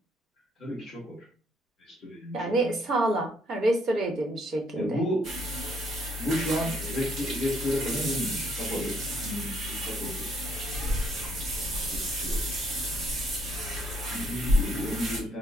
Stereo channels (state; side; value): normal; both; correlation 0.69